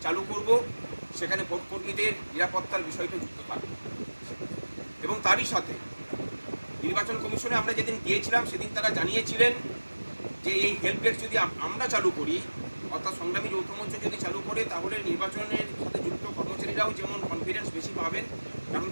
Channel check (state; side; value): inverted; both; correlation -1.00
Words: চালু করব, সেখানে ভোটকর্মীদের নিরাপত্তার বিষয়টা যুক্ত থাকবে। এবং তারই সাথে নির্বাচন কমিশনে আমরা যেদিন গিয়েছিলাম সেদিন তারা জানিয়েছিলেন যে এই হেল্প ডেস্ক যদি আমরা চালু করি, অর্থাৎ সংগ্রামী যৌথ মঞ্চ যদি চালু করে, তাহলে নির্বাচনের সাথে যুক্ত কর্মচারীরাও যেমন কনফিডেন্স বেশি পাবেন, কারণ